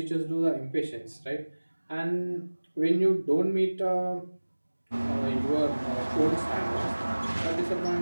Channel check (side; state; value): both; inverted; correlation -1.00